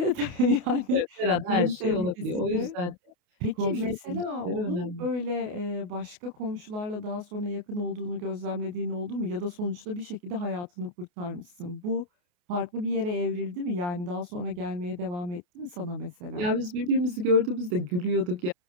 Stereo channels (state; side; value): late; left; 28 ms